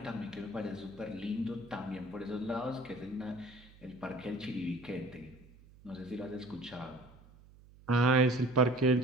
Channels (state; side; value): noise; right; hum, 23 dB below the sound